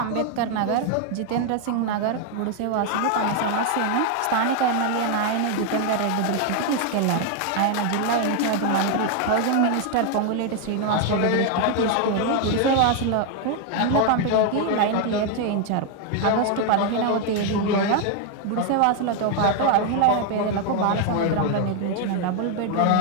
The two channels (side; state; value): both; different; correlation 0.00